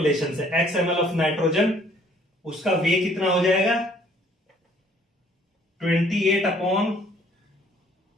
से XML ऑफ नाइट्रोजन, उसका वे कितना हो जाएगा 28 अपॉन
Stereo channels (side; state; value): both; normal; correlation 0.60